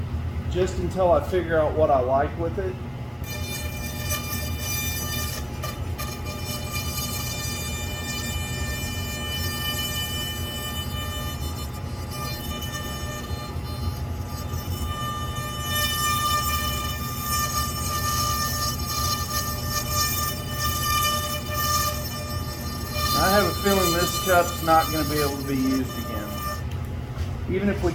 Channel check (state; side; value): identical; both; correlation 1.00